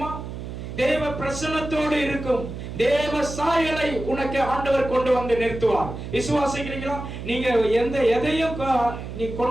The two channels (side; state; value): right; noise; hum, 9 dB below the sound